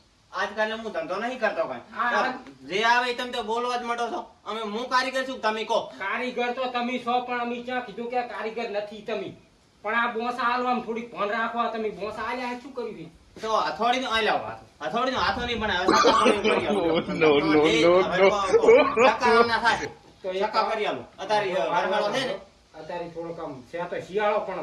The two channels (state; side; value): identical; both; correlation 1.00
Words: આજકાલ હું ધંધો નહીં કરતો હા, કઈ જે આવે એ તમે તો બોલવા જ માંડો છો અમે હું કારીગર છું તમે કહો કારીગર તો તમે છો પણ અમે ક્યાં કીધું કે કારીગર નથી તમે પણ આ બોસા હાલવામાં થોડીક ભણ રાખવા તમે બોસા હાલ્યા શું કર્યું છે? તો હથોડીનો આ લાવો હથોડીનો હાથો નહીં બનાવે સક્કા કરી આલો. No, no, no, no. સક્કા ના થાય તો એક સક્કા કરી આલો અત્યારે વરસાદો છે ને અત્યારે થોડોક આમ છે તો શિયાળો